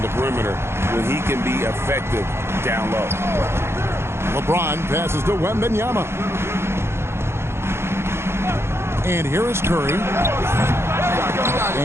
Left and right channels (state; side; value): late; left; 0.12 ms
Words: the perimeter when he can be effective down low. LeBron passes to Wembanyama. And here is Curry.